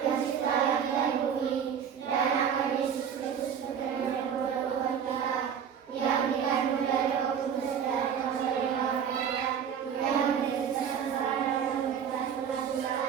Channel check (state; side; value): quieter; left; 7.9 dB